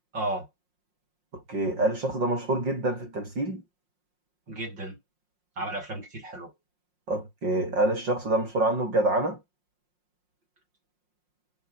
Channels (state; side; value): late; left; 5.6 ms